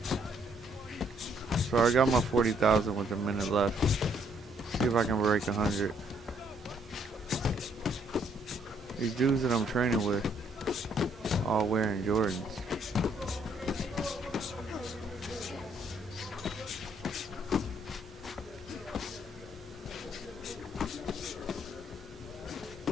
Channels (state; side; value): normal; both; correlation 0.68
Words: So I got my 40,000 with a minute left. See if I can break 100. These dudes that I'm training with, all wearing Jordans.